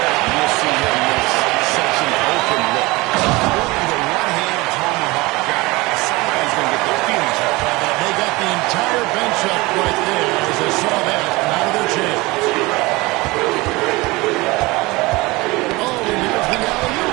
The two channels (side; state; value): left; quieter; 22.6 dB